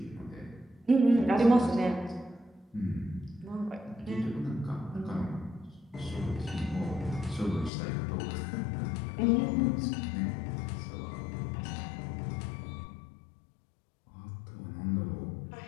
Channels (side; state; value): right; drops out; at 7.7 s